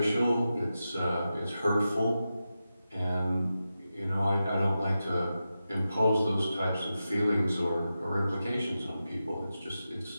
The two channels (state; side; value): inverted; both; correlation -0.91